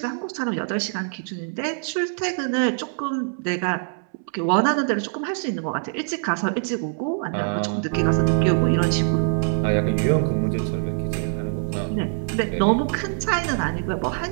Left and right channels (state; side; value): silent; left; 63 dB below the other